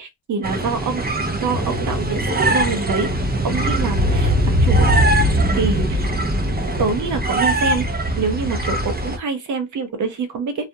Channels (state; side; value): normal; both; correlation 0.33